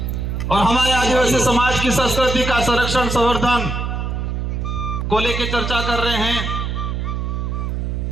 और हमारे आदिवासी समाज की संस्कृति का संरक्षण संवर्धन को लेकर चर्चा कर रहे हैं।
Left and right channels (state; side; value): noise; right; hum, 2 dB below the sound